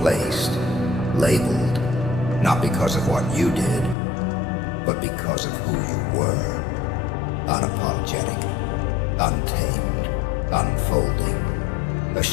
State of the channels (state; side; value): drops out; right; at 4.0 s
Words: labeled, not because of what you did, but because of who you were. Unapologetic, untamed, unfolding, a